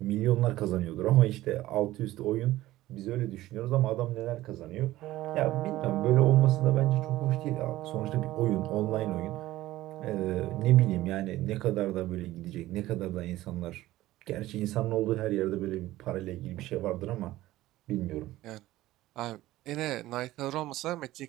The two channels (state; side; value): quieter; left; 16.2 dB